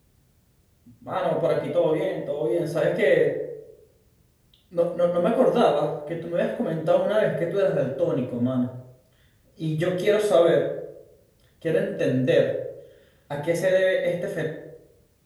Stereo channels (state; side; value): identical; both; correlation 1.00